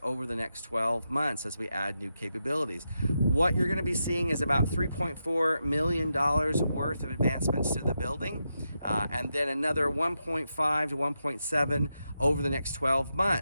over the next 12 months as we add new capabilities. What you're going to be seeing is about $3.4 million worth of advancements to the building, and then another 1.5 to 1.7 over the next 12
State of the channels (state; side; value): inverted; both; correlation -0.86